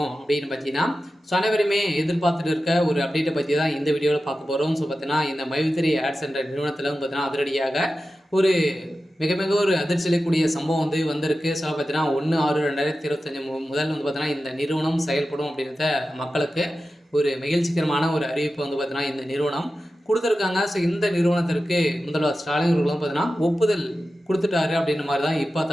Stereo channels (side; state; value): both; normal; correlation 0.93